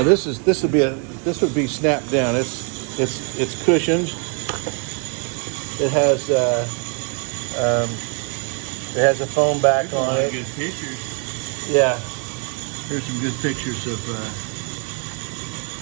this would be snapped down. It's cushioned. It has a foam back on it. Good pictures. Yeah. Here's some good pictures of.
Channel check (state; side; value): quieter; left; 38.9 dB